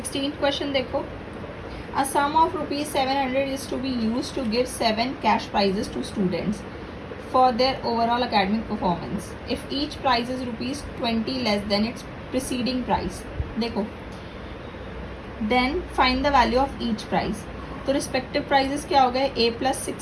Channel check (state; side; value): identical; both; correlation 1.00